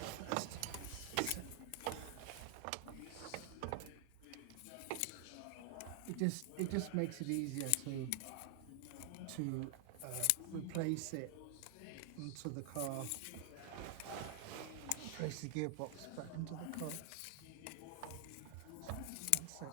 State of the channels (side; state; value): both; different; correlation 0.00